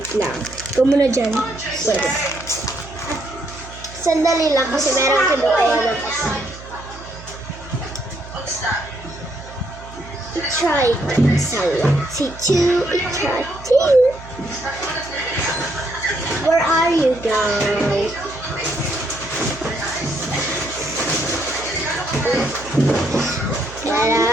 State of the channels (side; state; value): right; noise; hum, 16 dB below the sound